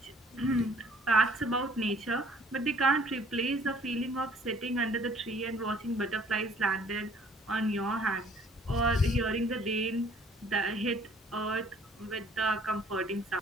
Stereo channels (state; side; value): normal; both; correlation 0.57